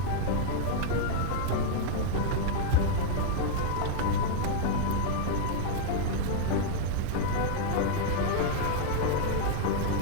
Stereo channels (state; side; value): different; both; correlation -0.01